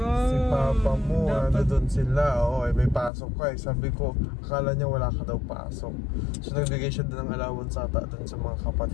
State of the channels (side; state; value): right; drops out; at 3.1 s